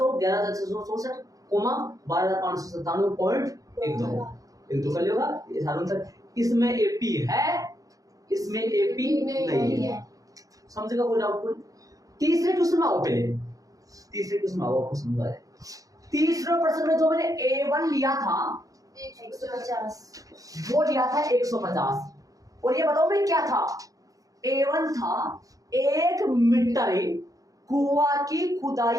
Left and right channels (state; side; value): late; left; 0.17 ms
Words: 11,664, 12,597.12 कर लेगा ये सारा आंसर। इसमें एपी है, इसमें एपी नहीं है। समझेगा कोई डाउट? तीसरे क्वेश्चन में आओ, पहले तीसरे क्वेश्चन में आओ, आपको समझा है। तीसरे प्रश्न में जो मैंने A1 लिया था 150, वो लिया था 150, और ये बताओ मैं क्या था? A1 था 1 मीटर कुआं की